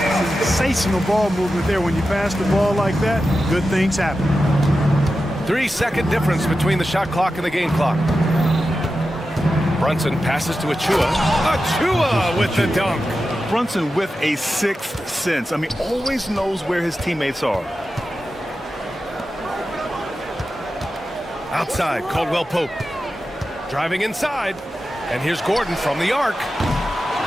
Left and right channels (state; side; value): normal; both; correlation 0.92